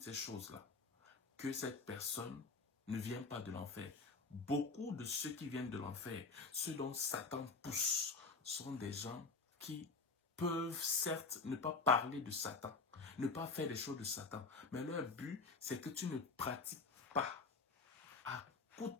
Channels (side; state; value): right; quieter; 4.2 dB